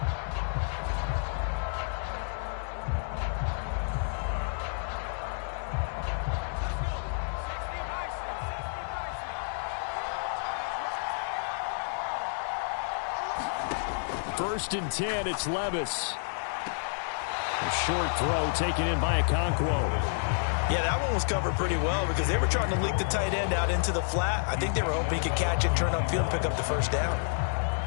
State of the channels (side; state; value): right; silent; digital silence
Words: First and 10, it's Levis. A short throw taken in by Okonkwo. Yeah, that one was covered pretty well because they were trying to leak the tight end out into the flat. I think they were hoping he could catch it, turn upfield, and pick up the first down.